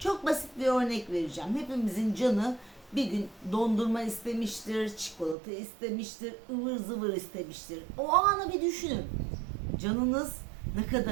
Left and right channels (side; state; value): left; drops out; at 5.4 s